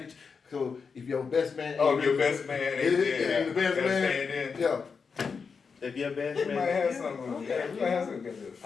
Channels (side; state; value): right; quieter; 5.5 dB